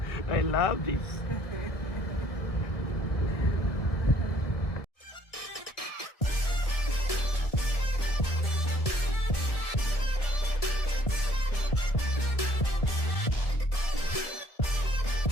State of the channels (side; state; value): right; late; 1.7 ms